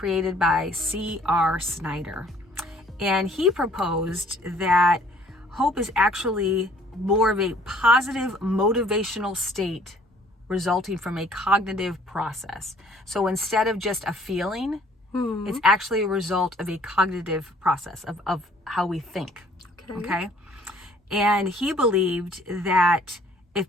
by C.R. Snyder. And he proposed that hope is actually more of a positive motivational state resulting from a cognitive process. So instead of just a feeling, it's actually a result of a cognitive process of how we think. Okay? And he believed that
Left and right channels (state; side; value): normal; both; correlation 0.57